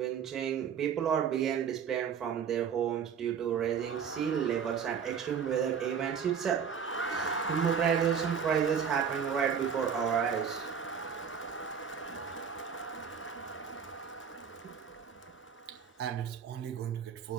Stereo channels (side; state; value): left; quieter; 7.3 dB